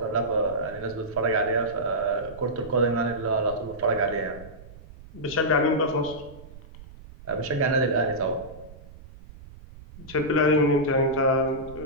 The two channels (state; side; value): noise; right; rumble, 18 dB below the sound